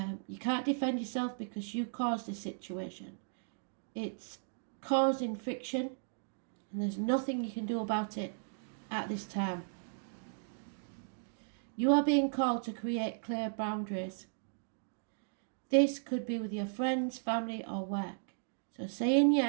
You can't defend yourself because you caused the situation. It's causing friction, and there's nothing you can do about it at this time. You are being called to create clear boundaries. This could be with your friends, family, or work. So saying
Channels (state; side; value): silent; left; digital silence